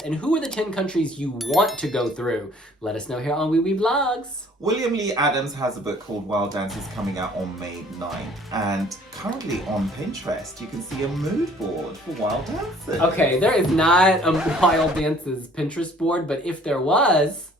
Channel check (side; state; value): both; normal; correlation 0.55